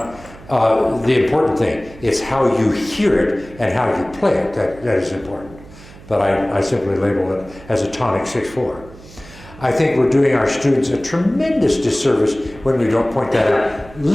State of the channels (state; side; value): noise; right; hum, 20 dB below the sound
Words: the important thing is how you hear it and how you play it. That is important. But I simply label it as a tonic 6/4. I think we're doing our students a tremendous disservice when we don't point that out.